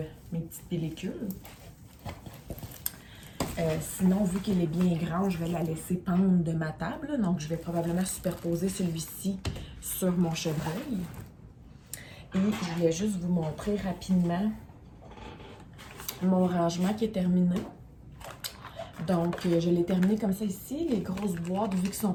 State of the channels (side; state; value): both; identical; correlation 1.00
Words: mes petites pellicules. Sinon, vu qu'elle est bien grande, je vais la laisser pendre de ma table. Donc, je vais probablement superposer celui-ci sur mon chevreuil. Et je voulais juste vous montrer rapidement mon rangement qui est terminé. Donc, je l'ai terminé comme ça ici. Les grosses boîtes, vu qu'elles sont